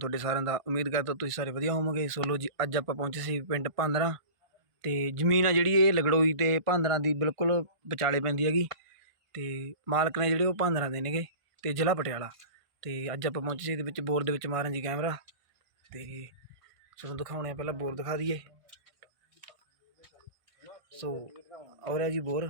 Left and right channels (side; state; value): left; late; 1.5 ms